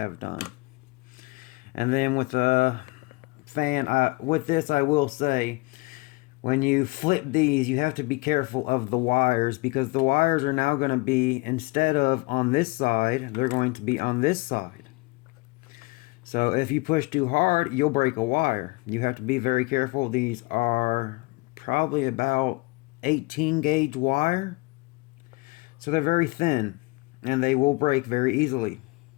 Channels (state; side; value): quieter; right; 25.3 dB